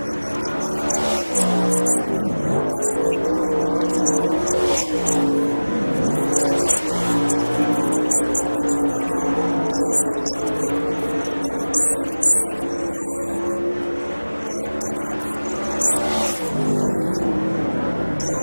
and take the action and soak up some sun here next weekend as these drivers are going to trip the trigger for the first time. Justin Duty 13th quick, 15.778. Jake O'Neill is 11th quick, 1:49.77. 1 lap coming up for the 73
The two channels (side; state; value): both; inverted; correlation -1.00